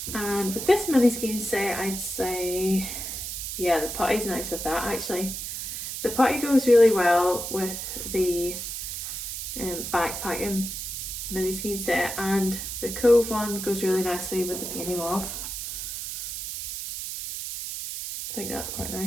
And with this mini skein set, I'd say, yeah, the putty's nice with that actually. The putty goes really well with the backpacking mini skein set, and the Cove one goes really nicely with the Peony Mauve. I think that's quite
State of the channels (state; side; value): noise; right; hiss, 5 dB below the sound